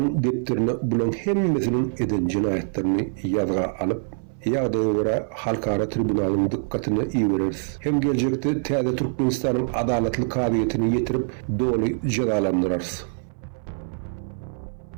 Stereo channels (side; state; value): left; silent; 59 dB below the other